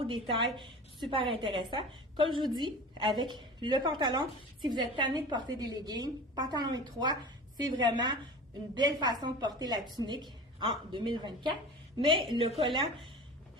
détail, super intéressant. Comme je vous dis, avec le pantalon, si vous êtes tanné de porter des leggings, pantalon étroit, c'est vraiment une belle façon de porter la tunique en 2024. Mais le collant,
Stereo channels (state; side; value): normal; both; correlation 0.37